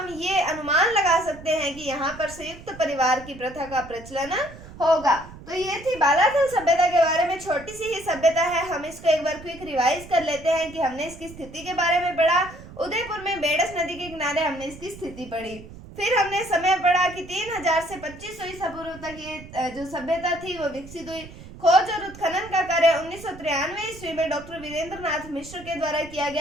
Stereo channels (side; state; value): right; noise; rumble, 17 dB below the sound